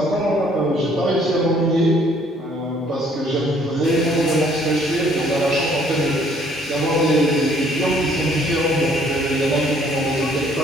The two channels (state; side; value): normal; both; correlation 0.62